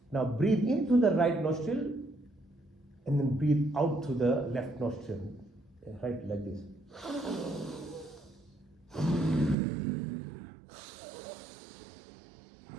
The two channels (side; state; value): left; drops out; at 9.6 s